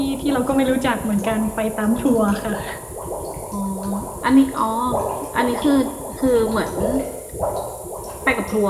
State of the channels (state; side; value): identical; both; correlation 1.00